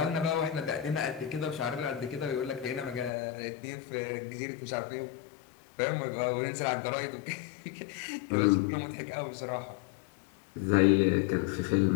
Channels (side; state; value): right; drops out; at 3.1 s